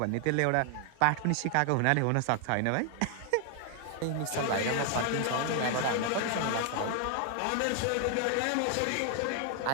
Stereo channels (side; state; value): both; different; correlation 0.00